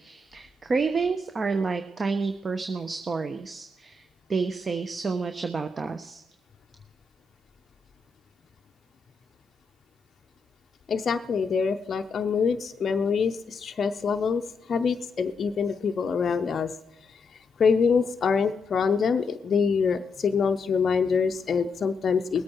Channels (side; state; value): right; quieter; 3.6 dB